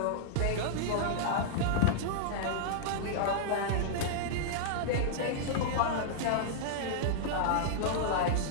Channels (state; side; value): different; both; correlation -0.02